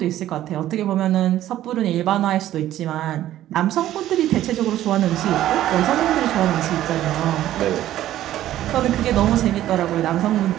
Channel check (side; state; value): left; quieter; 13.2 dB